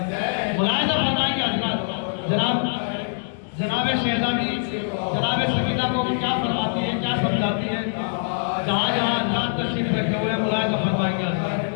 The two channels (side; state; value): right; silent; digital silence